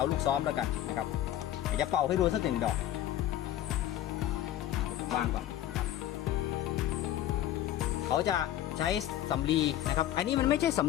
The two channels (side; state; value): right; quieter; 12.6 dB